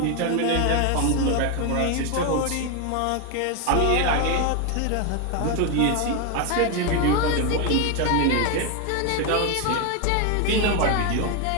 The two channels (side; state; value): both; different; correlation 0.01